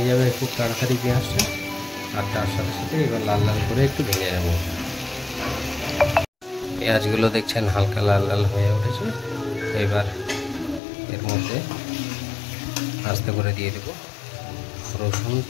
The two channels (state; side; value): drops out; right; at 10.8 s